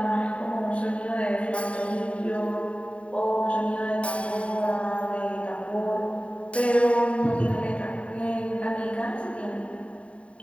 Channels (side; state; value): right; late; 0.062 ms